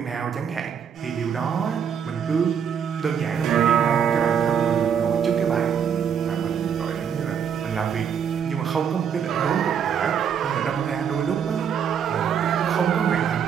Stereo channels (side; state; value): left; quieter; 7.7 dB